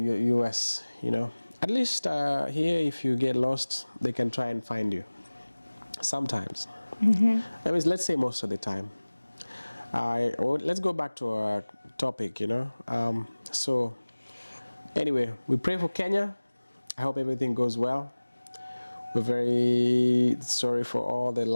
US, you know. At least here, if you get lost, they can try and find you. Sometimes. I mean, let's say most of the time. Let's go back to our topic, you know. So anyway, we pray for Kenya. I hope everything goes well. We're very sorry for all the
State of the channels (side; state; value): both; inverted; correlation -1.00